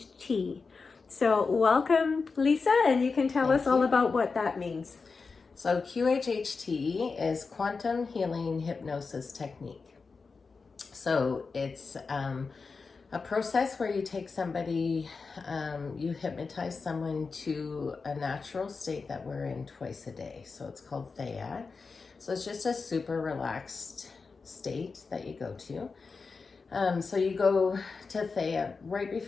So, welcome, Lisa, and you can tell us all about what that means. So QHHT is Quantum Healing Hypnosis Technique. So it's a process where you take somebody, you hypnotize someone to a natural state that we're in twice a day. So it's called Thea. So it's just a super relaxed state that you go to. So you go to Thea right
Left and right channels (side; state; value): right; quieter; 4.6 dB